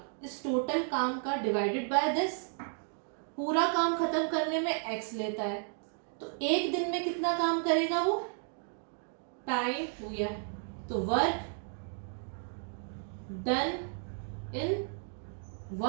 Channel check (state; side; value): silent; left; 56 dB below the other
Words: इस टोटल काम का डिवाइडेड बाय दिस, पूरा काम खत्म करने में x लेता है, तो एक दिन में कितना काम करेगा वो, टाइम हो गया, तो work done in